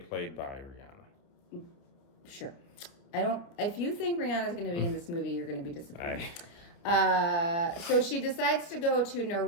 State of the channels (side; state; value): right; late; 29 ms